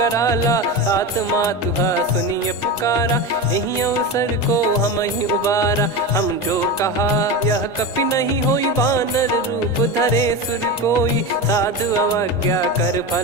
आत्मा तुहा सुनिय पुकारा यही अवसर को हम ही उबारा हम जो कहा यह कपि नहीं होई बानर रूप धरे सुर कोई साधु अवज्ञा कर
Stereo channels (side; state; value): both; normal; correlation 0.21